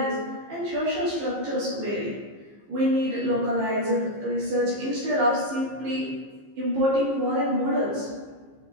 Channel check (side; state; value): left; late; 15 ms